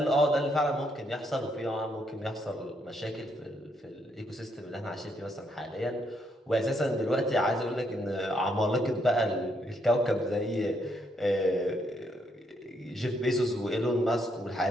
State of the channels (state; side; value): normal; both; correlation 0.75